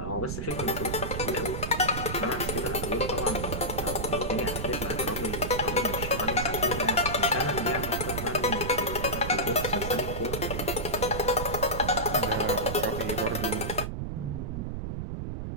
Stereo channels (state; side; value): noise; right; rumble, 4 dB below the sound